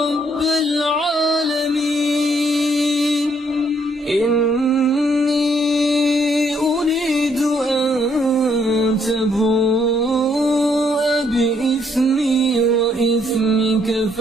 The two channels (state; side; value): normal; both; correlation 0.70